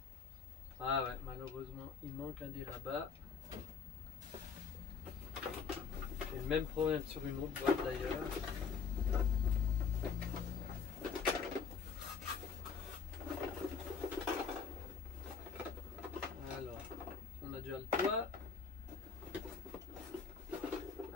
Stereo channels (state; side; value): quieter; right; 5.8 dB